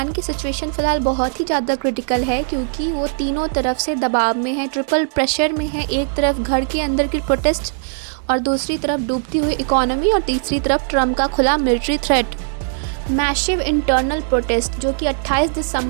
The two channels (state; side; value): silent; left; digital silence